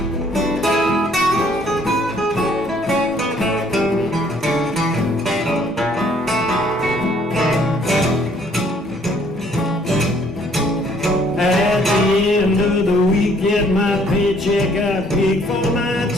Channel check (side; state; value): both; normal; correlation 0.62